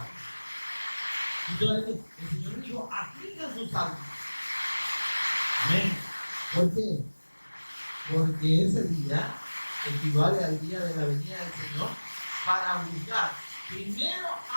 Entonces el Señor dijo, apliquen sus almas. Amén. ¿Por qué? Porque ese día equivale al día de la venida del Señor para juzgar primero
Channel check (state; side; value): inverted; both; correlation -1.00